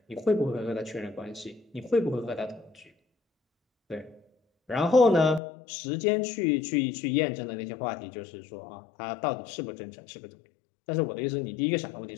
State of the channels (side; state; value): right; drops out; at 5.4 s